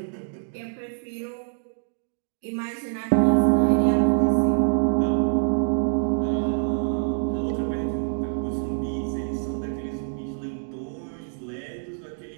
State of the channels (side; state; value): left; silent; digital silence